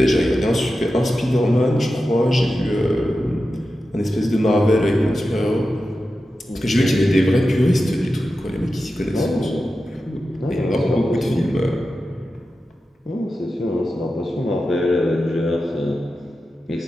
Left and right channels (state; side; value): normal; both; correlation 0.92